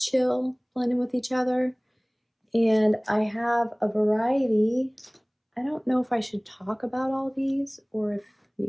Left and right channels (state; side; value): identical; both; correlation 1.00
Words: blending with each other. And I have a variety. I don't know if I should talk about all these or if you